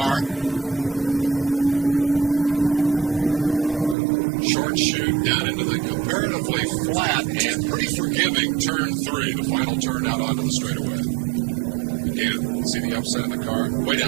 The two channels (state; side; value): drops out; left; at 4.0 s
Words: Short chute down into the comparatively flat and pretty forgiving turn 3, the final turn out onto the straightaway. Again, see the upset in the car? Way